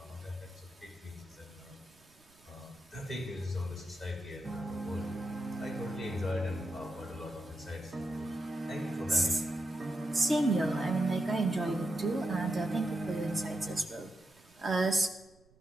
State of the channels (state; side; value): noise; right; rumble, 30 dB below the sound